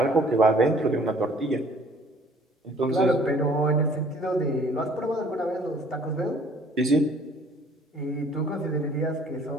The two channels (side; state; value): both; normal; correlation 0.56